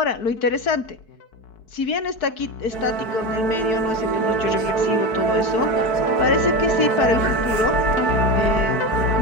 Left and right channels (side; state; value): right; late; 4.6 ms